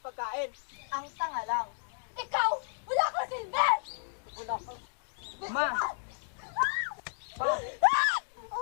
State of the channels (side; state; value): right; silent; digital silence